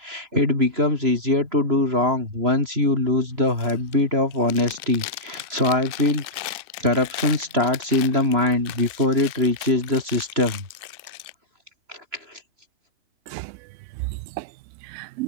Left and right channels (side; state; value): left; late; 2.6 ms